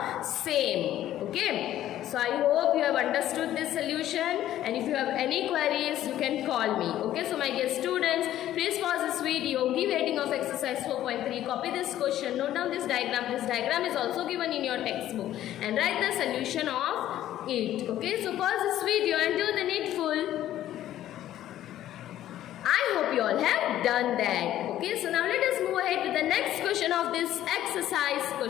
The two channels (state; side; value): quieter; right; 12.7 dB